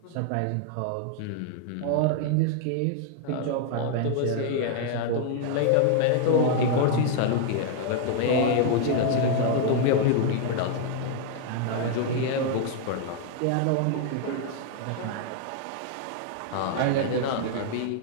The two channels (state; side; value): different; both; correlation 0.00